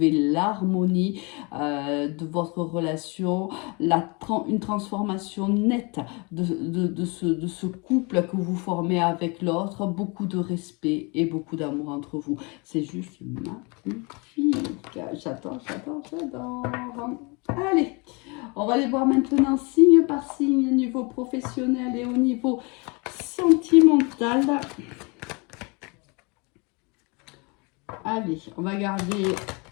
l'harmonie de votre relation, une transformation nette de ce couple que vous formez avec l'autre, beaucoup de respect et beaucoup d'amour entre vous. C'est juste magnifique. J'adore. Allez, on va aller voir maintenant signe par signe au niveau professionnel et au niveau sentimental. Allez, on va garder...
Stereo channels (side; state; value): right; quieter; 29.8 dB